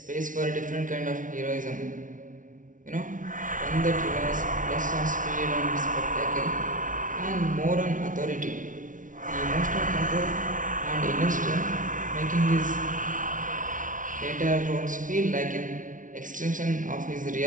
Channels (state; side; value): late; left; 0.38 ms